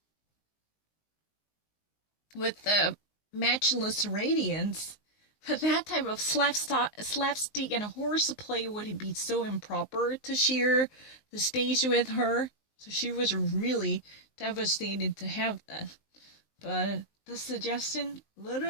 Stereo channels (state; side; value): late; right; 19 ms